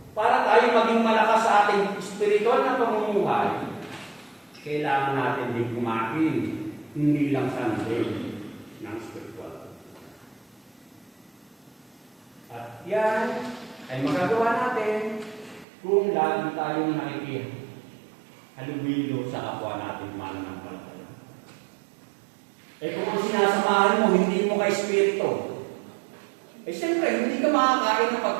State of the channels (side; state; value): left; drops out; at 15.7 s